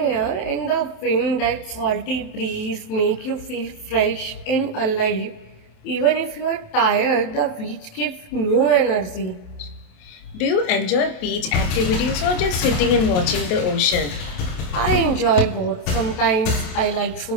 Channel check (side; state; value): right; late; 28 ms